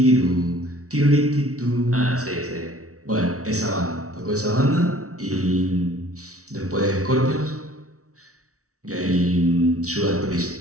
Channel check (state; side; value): late; left; 0.64 ms